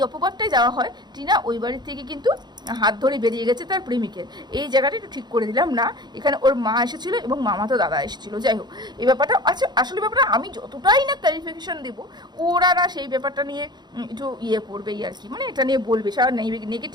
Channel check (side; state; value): left; late; 0.21 ms